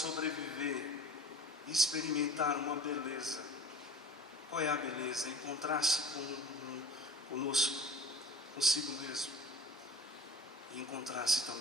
e experimentar uma beleza. Qual é a beleza? Encontrar-se conosco, consigo mesmo, e encontrar-se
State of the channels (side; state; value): both; normal; correlation 0.41